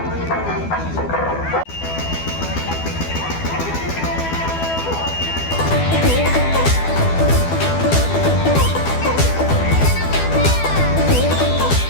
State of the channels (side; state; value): right; late; 12 ms